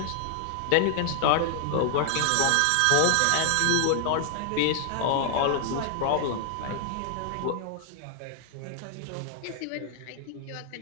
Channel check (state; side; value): different; both; correlation 0.00